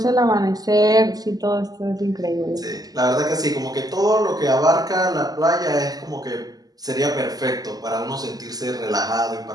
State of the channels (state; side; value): late; left; 0.18 ms